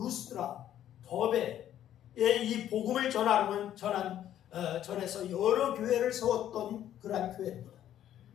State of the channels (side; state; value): right; quieter; 11.3 dB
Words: 더베에 이 복음을 전해서 여러 교회를 세웠던 그러한 교회입니다.